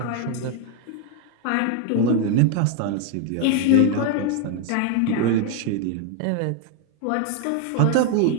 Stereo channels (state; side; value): different; both; correlation 0.01